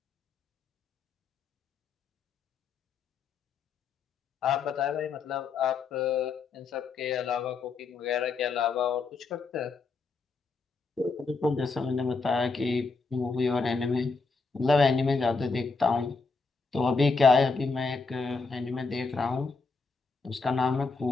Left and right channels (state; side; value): quieter; right; 4.4 dB